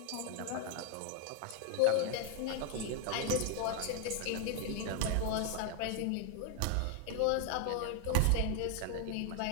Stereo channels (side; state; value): both; different; correlation 0.01